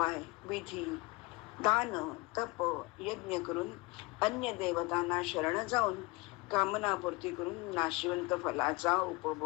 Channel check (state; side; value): quieter; right; 24.4 dB